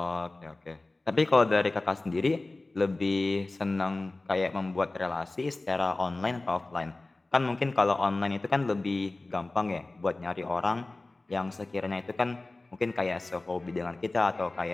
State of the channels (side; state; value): right; quieter; 3.0 dB